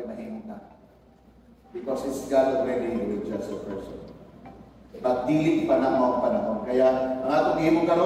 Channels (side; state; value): both; identical; correlation 1.00